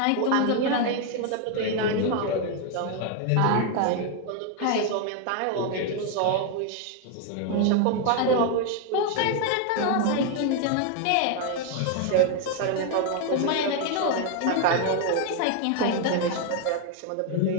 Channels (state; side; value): different; both; correlation 0.01